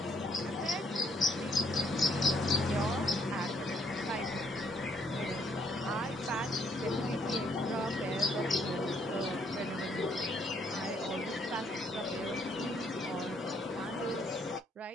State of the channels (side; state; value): both; normal; correlation 0.69